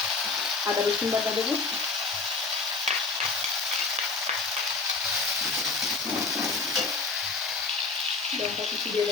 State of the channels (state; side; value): quieter; right; 4.2 dB